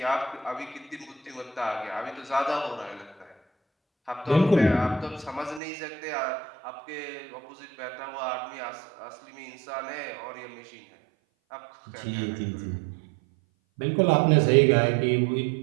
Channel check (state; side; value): drops out; left; at 5.6 s